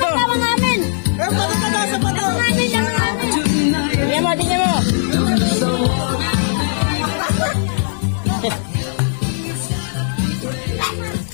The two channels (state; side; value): silent; right; 66 dB below the other